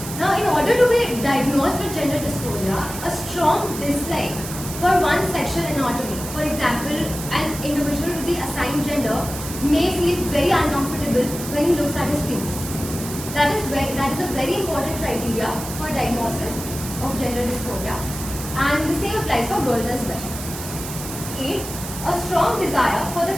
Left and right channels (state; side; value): noise; right; hiss, 9 dB below the sound